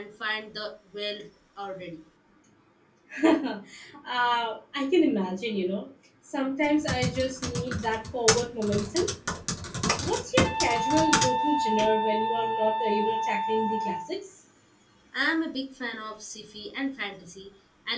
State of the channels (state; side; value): identical; both; correlation 1.00